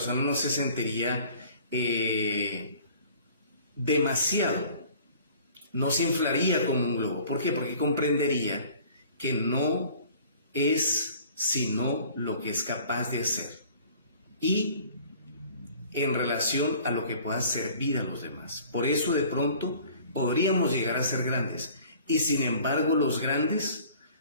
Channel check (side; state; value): both; inverted; correlation -0.50